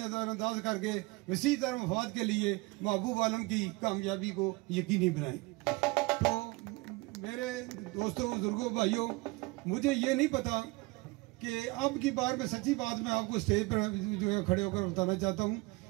करके वसी तरह मफाद के लिए महबूब आलम की कामयाबी को यकीनी बनाएं। तो मेरे दोस्तों, बुजुर्गों, भाइयों, मुझे ये नहीं पता कि अब की बार में सच्ची बात मैं आपको स्टेज पर जो है खड़े होकर बताना चाहता हूँ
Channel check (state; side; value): quieter; left; 24.2 dB